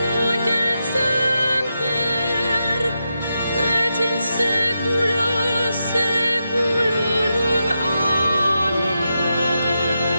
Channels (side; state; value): both; inverted; correlation -0.86